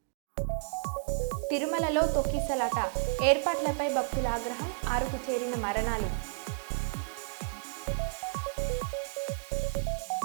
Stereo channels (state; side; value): silent; left; 57 dB below the other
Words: తిరుమలలో తొక్కిసలాట, ఏర్పాట్లపై భక్తుల ఆగ్రహం, 6కు చేరిన మరణాలు.